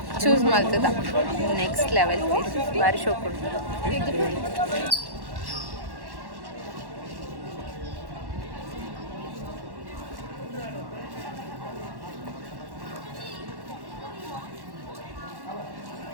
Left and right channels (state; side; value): late; left; 1.1 ms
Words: ಚೂಸ್ ಮಾಡ್ತದ. ನೆಕ್ಸ್ಟ್ ಲೆವೆಲ್ ಪ್ಲೇಸ್ ಭಾರಿ ಶೋ ಕೊಡ್ತದೆ.